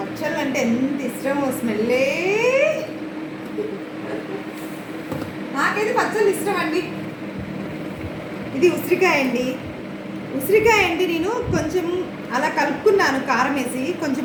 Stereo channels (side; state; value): both; identical; correlation 1.00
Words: అంటే ఎంత ఇష్టమో, స్మెల్లే. నాకైతే పచ్చళ్ళు ఇష్టం అండి. ఇది ఉసిరికాయ అండి. ఉసిరికాయ అండి నేను కొంచెం అలా కలుపుకున్నాను కారం వేసి.